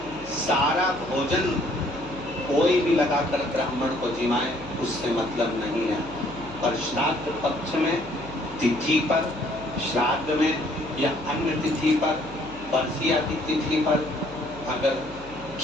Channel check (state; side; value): noise; right; hum, 17 dB below the sound